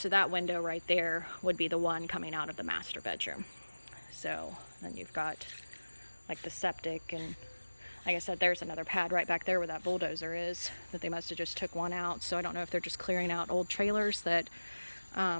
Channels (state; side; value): inverted; both; correlation -1.00